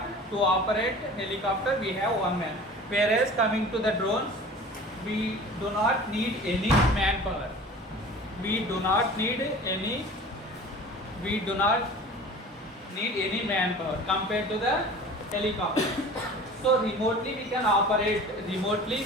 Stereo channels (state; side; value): normal; both; correlation 0.41